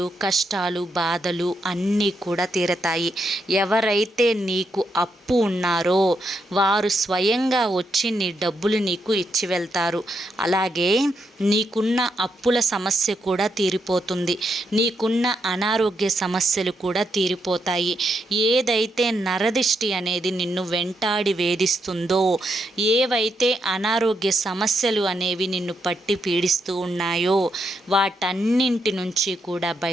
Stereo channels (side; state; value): both; normal; correlation 0.81